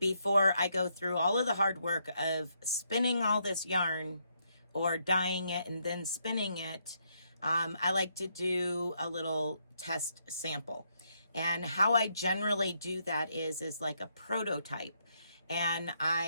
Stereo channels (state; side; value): inverted; both; correlation -0.76